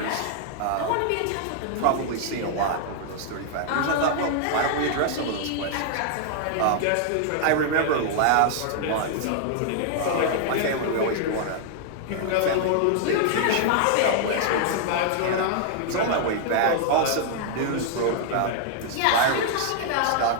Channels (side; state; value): both; different; correlation -0.01